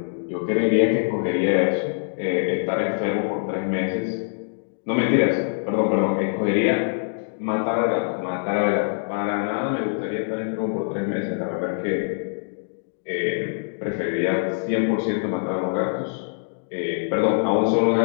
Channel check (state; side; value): silent; right; digital silence